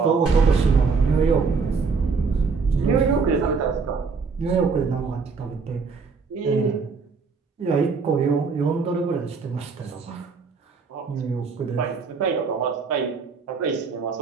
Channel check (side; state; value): left; quieter; 4.9 dB